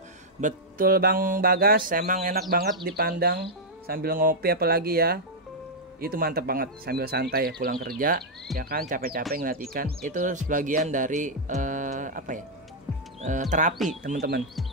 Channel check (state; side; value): normal; both; correlation -0.05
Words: Betul Bang Bagas, emang enak banget dipandang sambil ngopi apalagi ya. Itu mantep banget sambil santai ya pulang kerja ya kan, capek-capek ngeliat ikan. Itu sebagian dari terapi teman-teman,